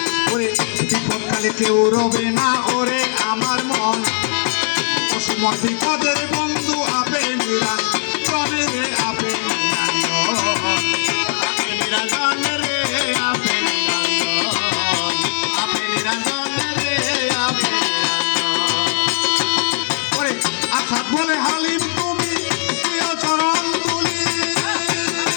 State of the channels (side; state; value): right; silent; 58 dB below the other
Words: বিপদকালে কেউ রবে না ওরে আমার মন অসময় বিপদ